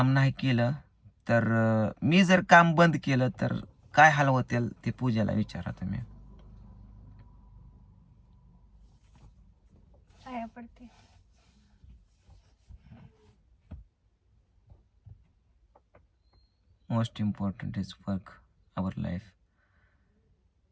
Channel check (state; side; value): identical; both; correlation 1.00